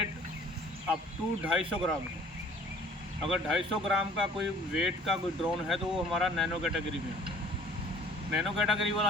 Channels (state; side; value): normal; both; correlation 0.53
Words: अप टू 250 ग्राम है। अगर 250 ग्राम का कोई वेट का कोई ड्रोन है तो वो हमारा नैनो कैटेगरी में है। नैनो कैटेगरी